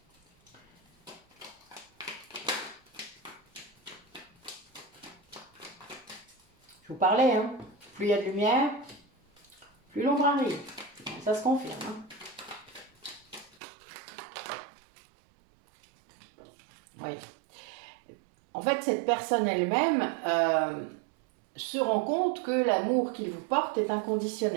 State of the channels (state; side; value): drops out; left; at 13.6 s